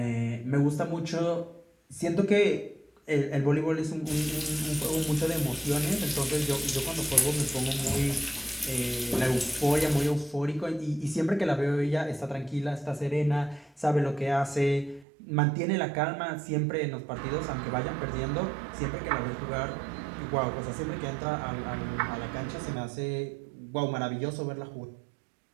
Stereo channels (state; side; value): drops out; left; at 15.1 s